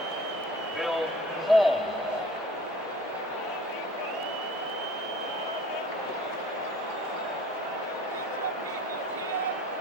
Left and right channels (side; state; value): both; normal; correlation 0.48